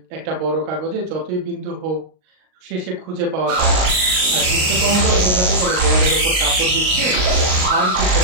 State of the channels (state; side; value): late; left; 38 ms